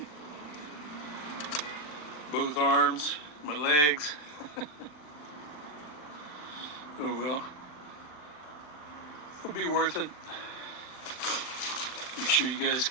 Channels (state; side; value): late; right; 39 ms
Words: Both arms, my legs. Oh well. It'll be worth it. Make sure you guys